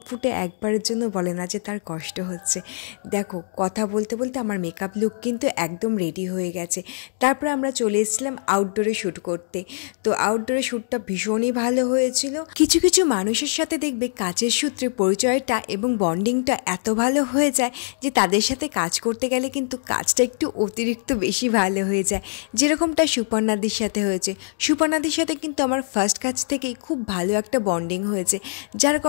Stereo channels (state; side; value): silent; right; digital silence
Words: ফুটে একবারের জন্য বলে না যে তার কষ্ট হচ্ছে। দেখো, কথা বলতে বলতে আমার মেকআপ লুক কিন্তু একদম রেডি হয়ে গেছে। তারপরে আমরা চলে এসেছিলাম আউটডোরে শ্যুট করতে। তো আউটডোরে শ্যুটটা ভীষণই ভালো হয়েছিল। কিছু কিছু মানুষের সাথে দেখবে কাজের সূত্রে পরিচয়টা এবং বন্ডিংটা এত ভালো হয়ে যায় যে তাদের সাথে কাজ করতে গেলে কিন্তু কাজটা একটু অতিরিক্ত বেশি ভালো হয়ে যায়, যেরকমটা সুপর্ণাদির সাথে হয়েছে। সুপর্ণাদির সাথে কিন্তু আমার ফার্স্ট কাজ থেকেই খুব ভালো একটা বন্ডিং হয়েছে, যার